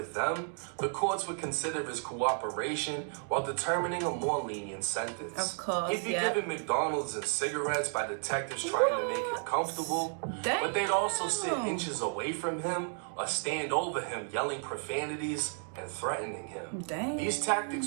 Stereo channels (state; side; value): silent; left; 56 dB below the other